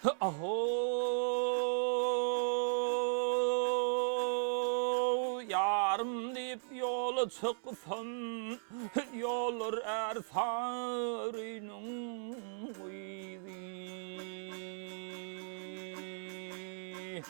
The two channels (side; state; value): left; silent; 53 dB below the other